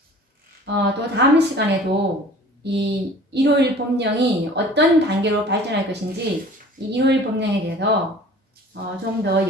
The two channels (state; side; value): normal; both; correlation 0.47